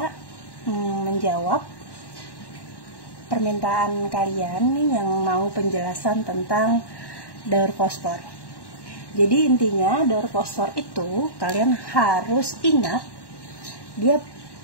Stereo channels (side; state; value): right; late; 1.1 ms